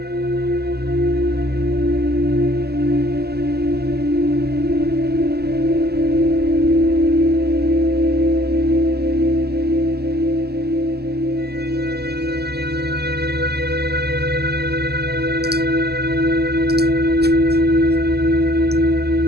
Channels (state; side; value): late; left; 0.46 ms